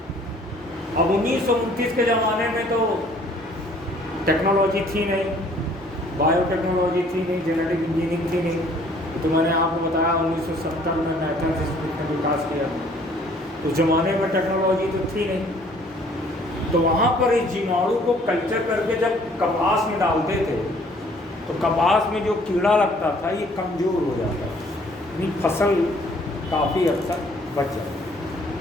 अब 1929 के ज़माने में तो टेक्नोलॉजी थी नहीं, बायोटेक्नोलॉजी थी नहीं, जेनेटिक इंजीनियरिंग थी नहीं। तो मैंने आपको बताया 1970 में मैथ्स इंस्टीट्यूट ने विकास किया। उस ज़माने में टेक्नोलॉजी तो थी नहीं, तो वहाँ पर इस जीवाणु को कल्चर करके जब कपास में डालते थे तो कपास में जो कीड़ा लगता था ये कमज़ोर हो जाता था, यानी फसल काफ़ी हद तक बच जाती।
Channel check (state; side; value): normal; both; correlation 0.58